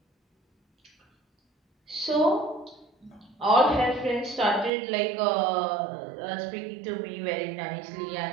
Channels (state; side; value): drops out; left; at 4.7 s